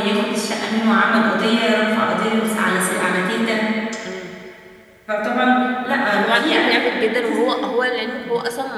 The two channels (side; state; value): both; identical; correlation 1.00